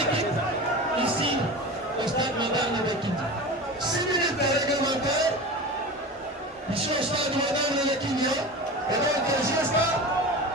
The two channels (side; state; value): both; normal; correlation 0.31